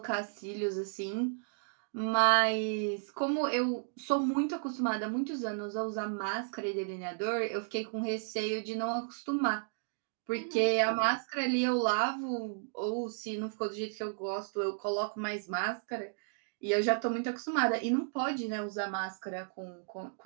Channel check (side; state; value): left; silent; digital silence